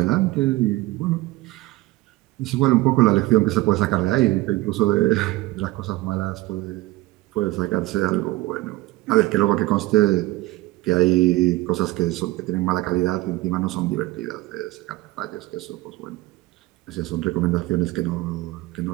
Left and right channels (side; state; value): left; quieter; 19.0 dB